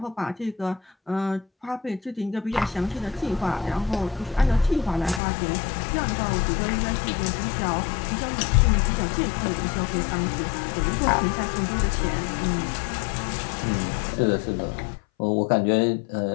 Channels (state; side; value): drops out; right; at 5.2 s